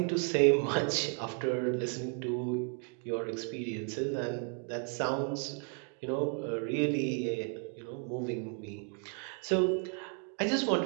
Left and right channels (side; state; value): left; quieter; 39.6 dB